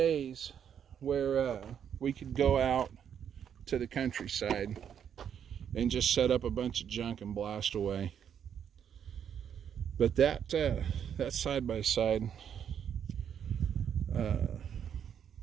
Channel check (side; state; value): left; quieter; 8.5 dB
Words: where we could go out to the countryside and just set up a bunch of junk and blast away. But that side by side,